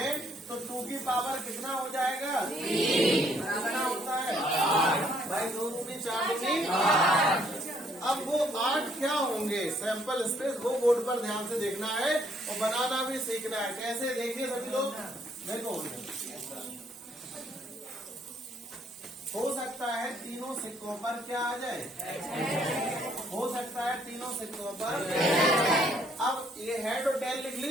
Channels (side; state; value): both; normal; correlation 0.67